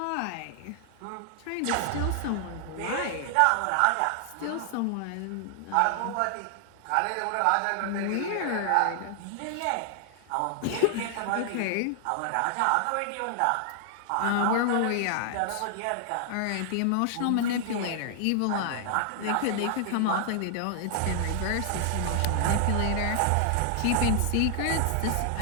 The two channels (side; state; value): both; different; correlation 0.00